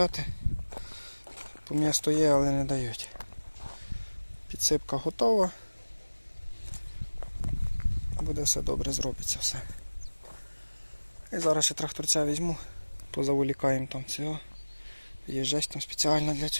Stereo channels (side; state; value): both; inverted; correlation -1.00